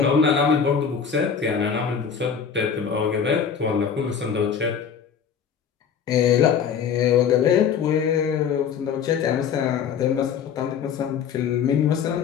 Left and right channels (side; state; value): right; quieter; 7.2 dB